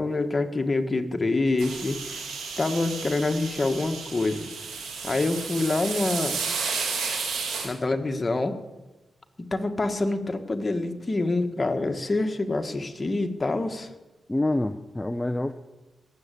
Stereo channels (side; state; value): both; normal; correlation 0.92